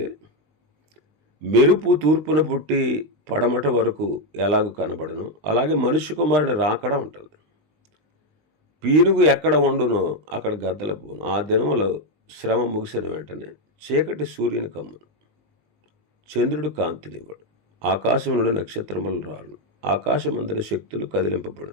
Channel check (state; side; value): late; left; 20 ms